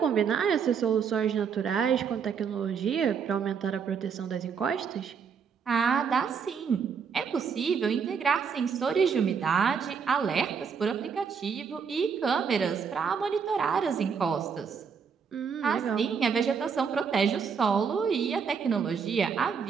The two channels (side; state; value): left; quieter; 6.4 dB